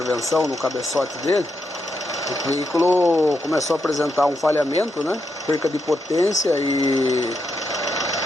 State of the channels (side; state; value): both; normal; correlation 0.83